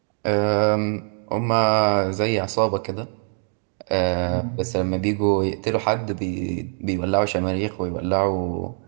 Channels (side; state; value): left; silent; 55 dB below the other